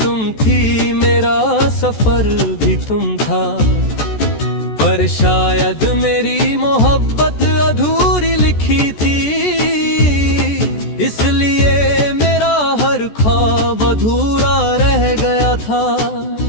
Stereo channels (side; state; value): right; late; 14 ms